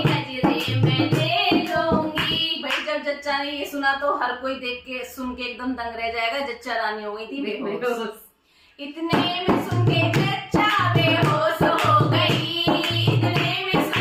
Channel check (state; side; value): identical; both; correlation 1.00